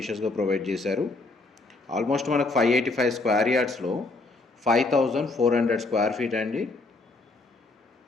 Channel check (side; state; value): right; quieter; 3.4 dB